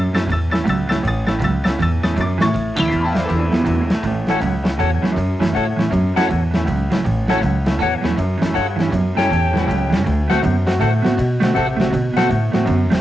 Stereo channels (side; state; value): both; normal; correlation 0.91